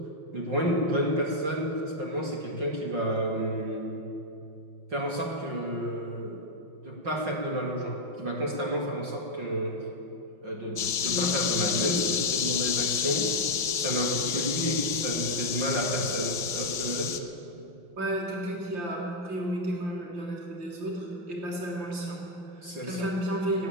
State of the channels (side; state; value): left; late; 5.1 ms